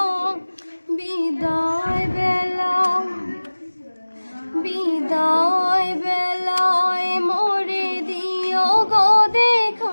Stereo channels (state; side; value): inverted; both; correlation -1.00